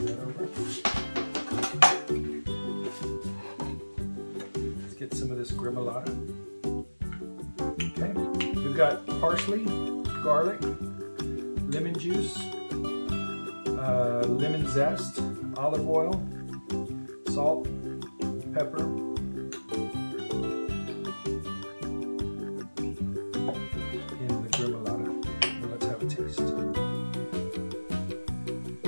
Get some of this gremolata. Okay, we've got parsley, garlic, lemon juice, lemon zest, olive oil, salt, pepper, and the gremolata. Now let's have a taste.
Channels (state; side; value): inverted; both; correlation -1.00